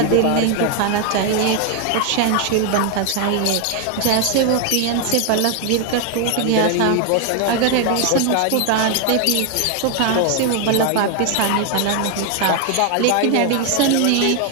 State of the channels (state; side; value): different; both; correlation 0.01